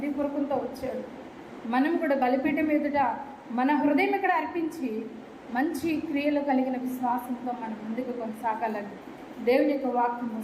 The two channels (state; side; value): identical; both; correlation 1.00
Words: వచ్చాడు. మనం కూడా బలిపీఠం ఎదుట మన హృదయం ఇక్కడ అర్పించి మంచి క్రియలు కలిగిన విశ్వాసంతో మనం ముందుకు కొనసాగాలని దేవుని యొక్క వాక్యము